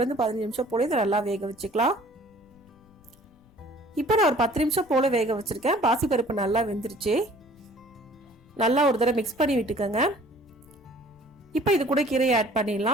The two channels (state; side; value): noise; left; rumble, 28 dB below the sound